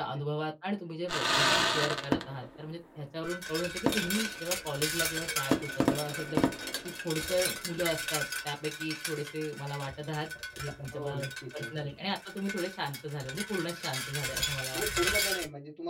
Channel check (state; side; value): identical; both; correlation 1.00